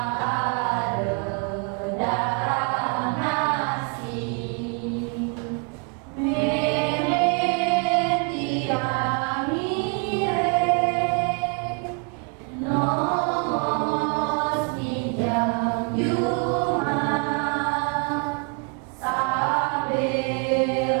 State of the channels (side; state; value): left; quieter; 35.3 dB